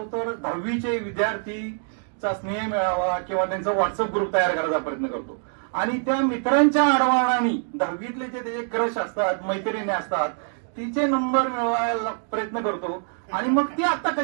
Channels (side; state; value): left; silent; 57 dB below the other